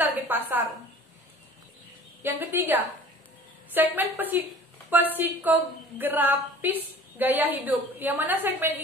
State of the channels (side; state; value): both; normal; correlation 0.46